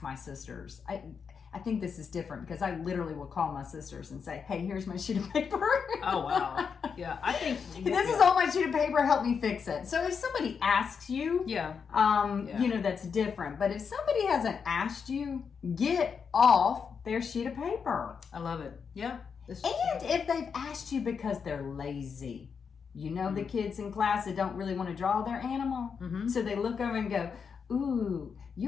my sisters. I think this is different because I literally will call my sisters and say, hey, here's my sheet of paper. Oh, wow. Yeah, I think... This is on my sheet of paper. Help me fix it. So if somebody asks you, that's different. But if somebody hasn't asked you, get off their sheet of paper. I love it. Yeah. And if they've asked you because they're lazy, the kids in class that don't really want to draw their animal, so they look over and go, ooh,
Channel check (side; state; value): right; quieter; 6.2 dB